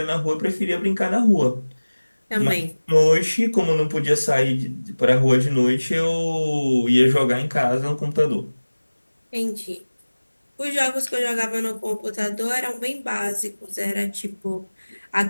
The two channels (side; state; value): both; inverted; correlation -1.00